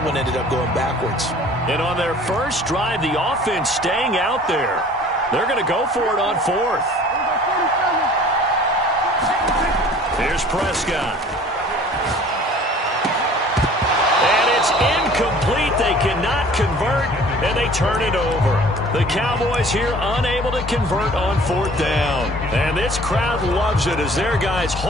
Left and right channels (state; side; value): normal; both; correlation 0.49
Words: one ended up going backwards. And on their first drive, the offense staying out there. They're going to go for it on 4th. Here's Prescott. And it's incomplete. They cannot convert, and they turn it over. The Cowboys here unable to convert on 4th down. And this crowd loves it as their guys